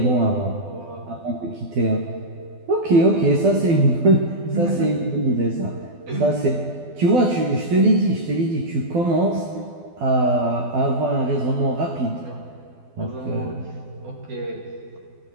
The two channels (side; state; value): left; late; 12 ms